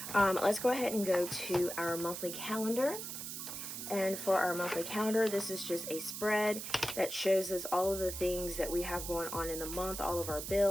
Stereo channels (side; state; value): right; noise; hiss, 7 dB below the sound